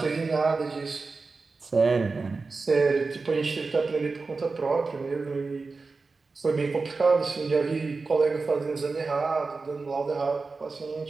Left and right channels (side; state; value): left; quieter; 4.1 dB